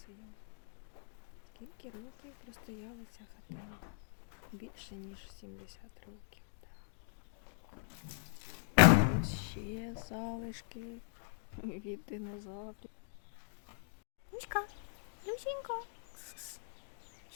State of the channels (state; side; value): silent; right; digital silence